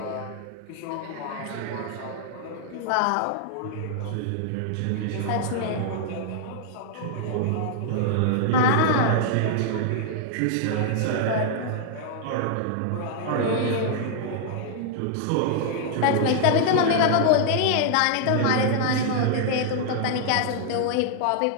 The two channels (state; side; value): different; both; correlation -0.01